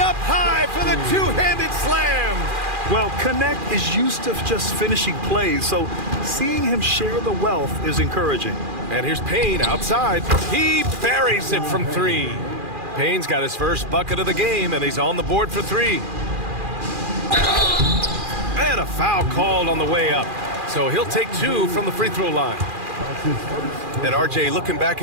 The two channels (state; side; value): late; left; 2.4 ms